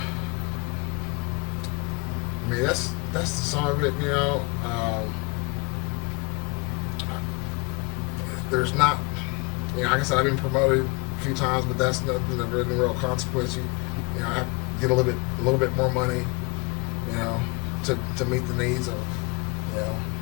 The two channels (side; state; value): right; quieter; 28.5 dB